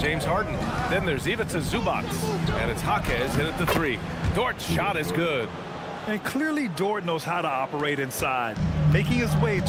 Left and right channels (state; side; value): identical; both; correlation 1.00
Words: Harden. Then there's Ivica Zubac, and it's Jaquez in at the three. Dort's shot is good. And clearly Dort knows how to operate inside, making his way